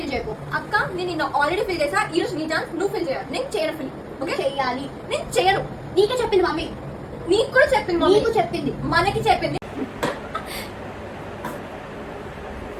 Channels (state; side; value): identical; both; correlation 1.00